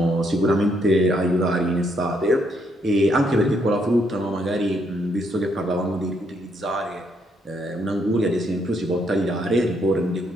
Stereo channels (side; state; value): both; normal; correlation 0.74